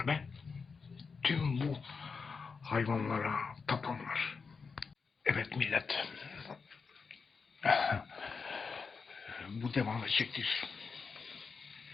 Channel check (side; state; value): right; quieter; 5.1 dB